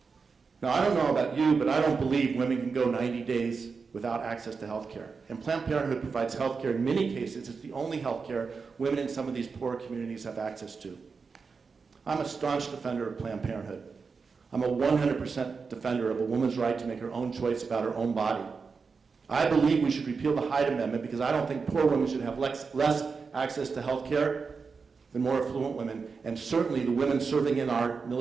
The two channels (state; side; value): quieter; left; 5.0 dB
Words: Now, I don't know about you, but I don't believe women can go 90 days without access to health care. And Planned Parenthood provides health care. In many cases, it's the only health care women in some of these poor communities have access to. I'm a staunch defender of Planned Parenthood. I'm a 100% defender of a woman's right to make her own choice about her own body. I believe we should repeal the Hyde Amendment because I don't think poor women should have less access to health care than more affluent women. And certainly the women serving in our